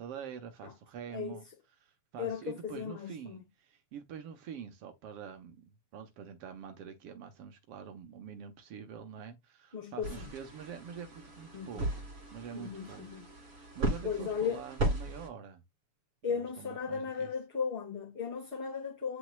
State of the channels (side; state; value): left; late; 7.0 ms